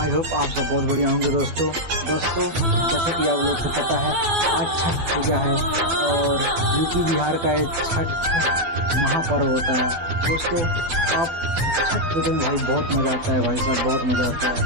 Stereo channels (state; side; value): late; left; 12 ms